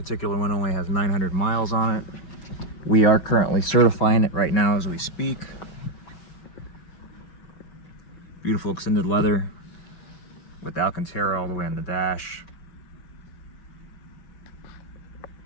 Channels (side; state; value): right; late; 6.1 ms